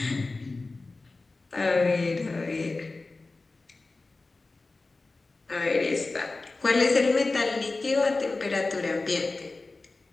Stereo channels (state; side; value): quieter; right; 3.4 dB